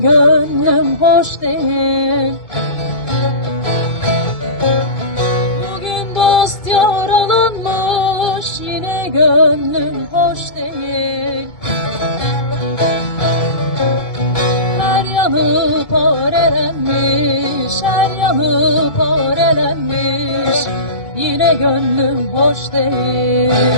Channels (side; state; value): right; late; 2.3 ms